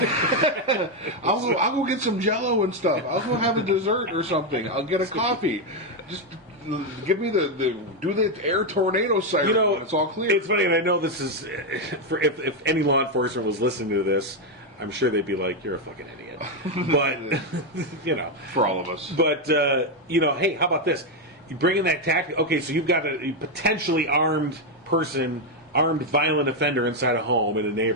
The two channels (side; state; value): both; normal; correlation 0.04